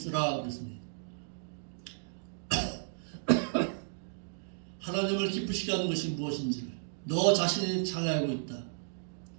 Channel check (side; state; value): left; silent; digital silence